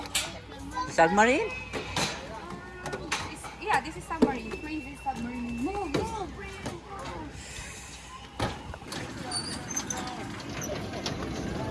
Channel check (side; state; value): both; identical; correlation 1.00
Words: Submarine? Yeah, this is submarine. Crazy submarine. Move, move.